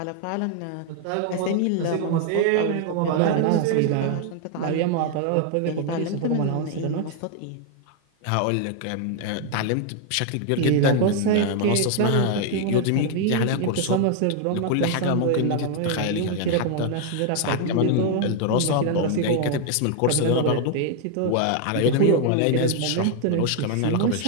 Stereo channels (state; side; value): different; both; correlation 0.00